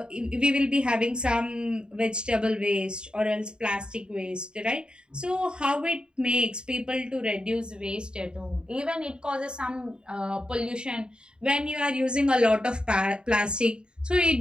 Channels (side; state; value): left; late; 0.050 ms